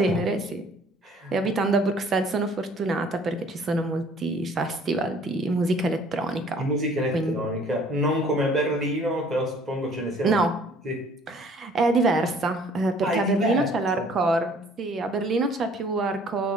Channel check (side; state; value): both; normal; correlation 0.55